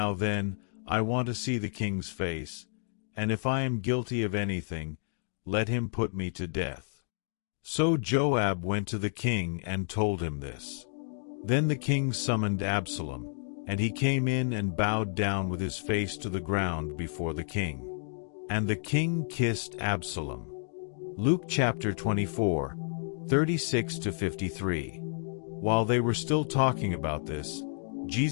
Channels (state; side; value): silent; right; digital silence